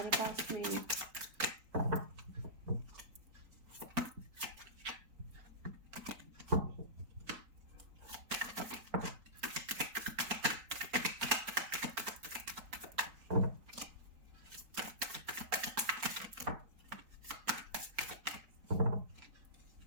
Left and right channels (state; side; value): late; left; 4.3 ms